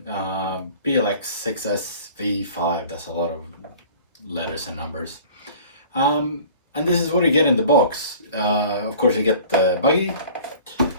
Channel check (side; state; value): both; inverted; correlation -0.46